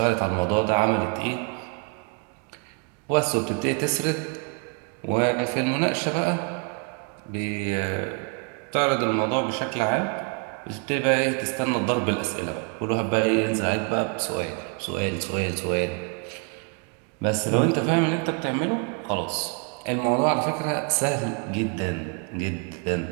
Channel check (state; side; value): quieter; left; 37.7 dB